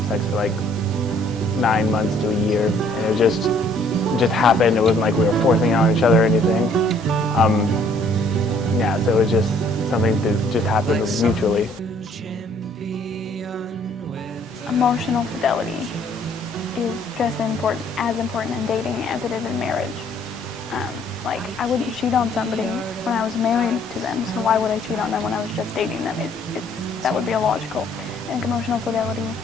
sex for like 9 months to a year, and it just happened. It wasn't like we were forcing it on each other or anything. Yeah, so it was just something that just happened mutually. Emotional fidelity is just as important in dating as it is in marriage. Like, I wouldn't cheat on somebody when I was married to them, so why would I cheat on them when I was just dating them? That would be illogical. And emotional fidelity,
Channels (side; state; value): both; normal; correlation 0.61